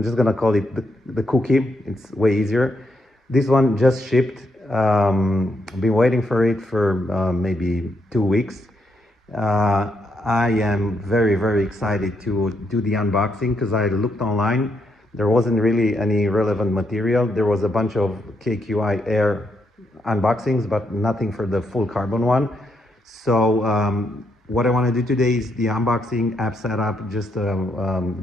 just gonna call it the cookie. It's way easier. This one just shipped. I've been waiting for it for maybe 2 weeks. I am very excited to do the unboxing because I looked online. There wasn't really any relevant material. There was a bunch of KQI Air unboxings, but nothing for the full carbon one. So what I want to do today is the unboxing, app setup, just a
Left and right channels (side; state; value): both; normal; correlation 0.78